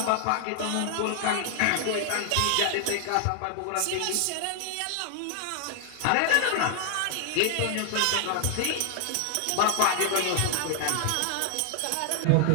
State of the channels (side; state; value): both; different; correlation 0.00